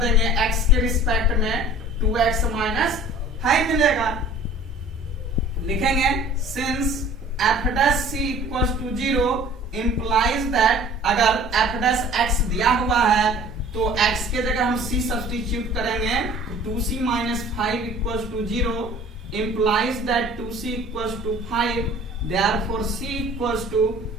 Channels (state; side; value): normal; both; correlation 0.48